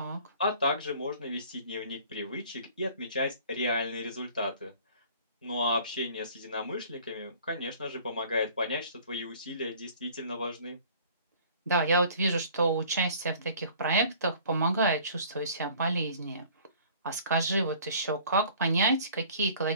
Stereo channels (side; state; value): both; inverted; correlation -0.51